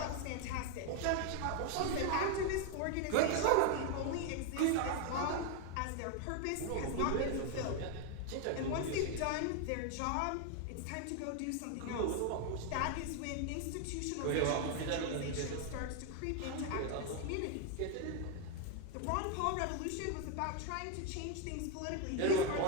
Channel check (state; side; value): different; both; correlation 0.01